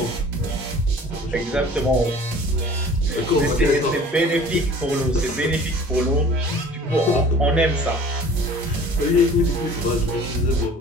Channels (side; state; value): both; normal; correlation 0.46